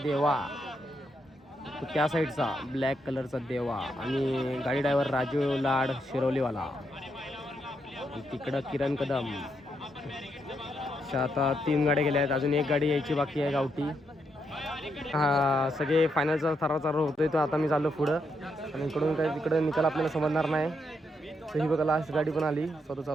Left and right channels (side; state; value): both; normal; correlation 0.79